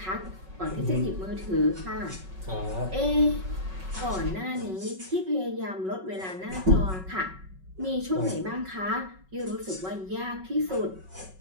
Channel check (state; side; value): late; left; 5.3 ms